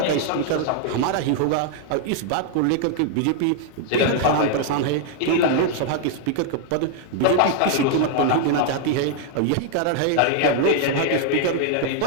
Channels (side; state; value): both; different; correlation 0.00